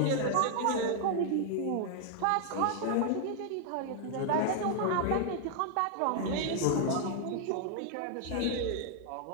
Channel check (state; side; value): different; both; correlation 0.00